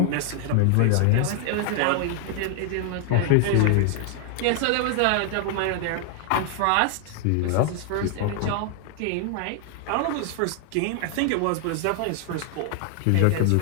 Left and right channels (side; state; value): both; different; correlation 0.00